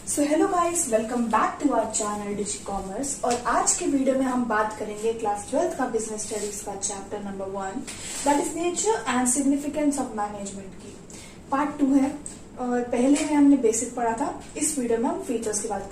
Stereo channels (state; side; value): identical; both; correlation 1.00